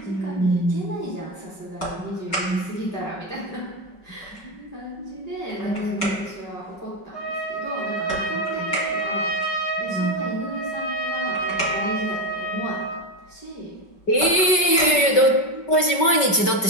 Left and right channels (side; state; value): right; late; 5.3 ms